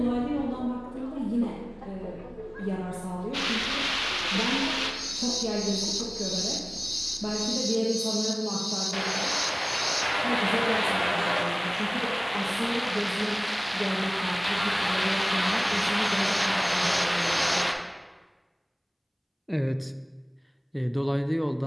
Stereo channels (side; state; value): both; identical; correlation 1.00